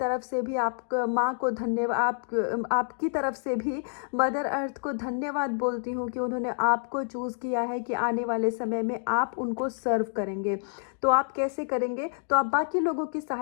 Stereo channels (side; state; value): right; silent; digital silence